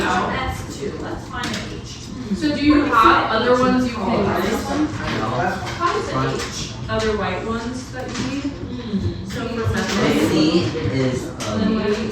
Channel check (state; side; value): identical; both; correlation 1.00